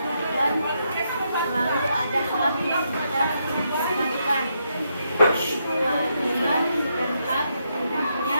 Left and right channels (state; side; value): inverted; both; correlation -0.79